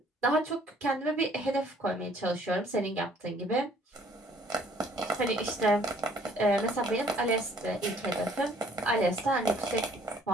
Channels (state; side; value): normal; both; correlation 0.60